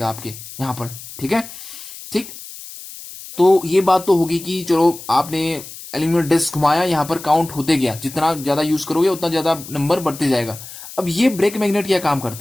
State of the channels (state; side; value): noise; left; hiss, 14 dB below the sound